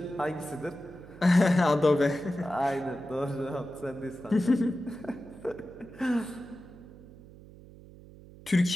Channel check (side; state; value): right; noise; hum, 20 dB below the sound